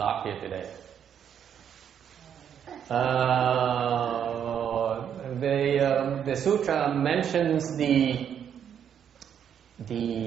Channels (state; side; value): quieter; left; 8.6 dB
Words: here today. The sutra mentions the